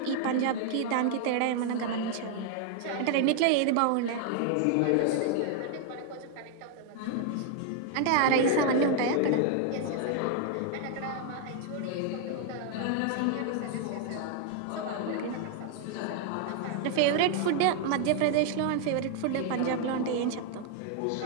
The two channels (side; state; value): both; different; correlation 0.00